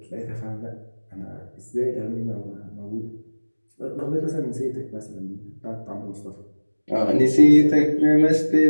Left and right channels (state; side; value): inverted; both; correlation -1.00